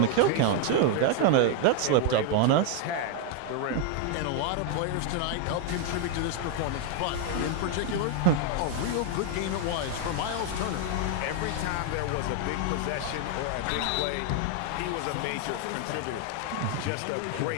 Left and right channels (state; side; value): different; both; correlation 0.00